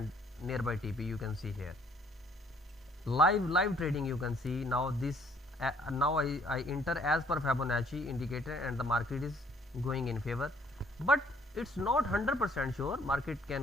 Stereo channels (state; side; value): normal; both; correlation 0.62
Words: nearby TP. You can see here live trading. You can see now this now I enter as per Fibonacci indicator and the market is going in favor, but it's not 100% sure. Market